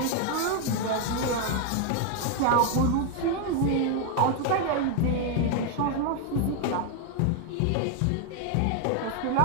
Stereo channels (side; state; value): both; different; correlation 0.00